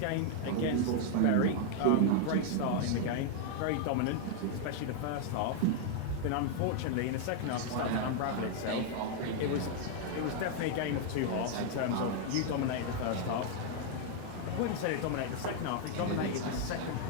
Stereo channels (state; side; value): different; both; correlation 0.00